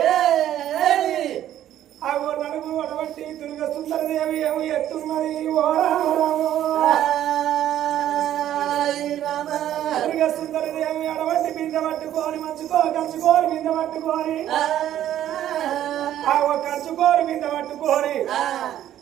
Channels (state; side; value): quieter; left; 11.8 dB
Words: ఆ నడుగు అడవట్టి దుర్గ సుందరదేవి ఏమి ఎత్తున్నది దుర్గ సుందరదేవి అడవట్టి బిందె పట్టుకొని కంచుకోరు బిందె పట్టుకొని కంచుకోరు బిందె పట్టుకొని